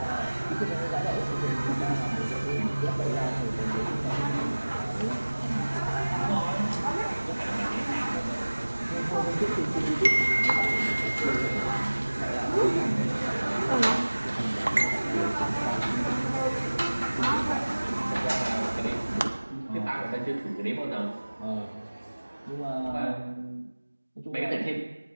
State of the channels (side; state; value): both; inverted; correlation -1.00